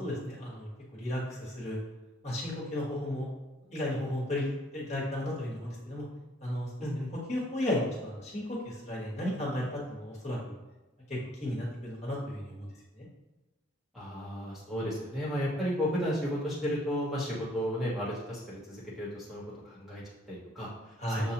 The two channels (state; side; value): normal; both; correlation 0.63